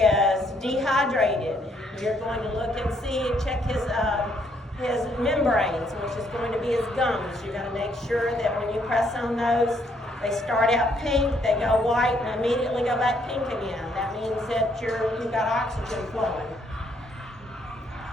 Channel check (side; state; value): both; normal; correlation 0.70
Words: dehydrated, you're going to look and see and check his membranes, which is going to be his gums. You're going to make sure that when you press on those, they start out pink, they go white, and immediately go back pink again. That means that you've got oxygen flowing.